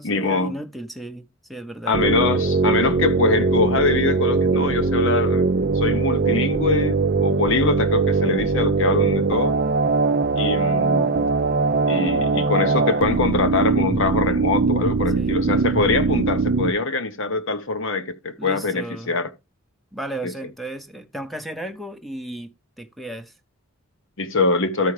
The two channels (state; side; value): normal; both; correlation 0.02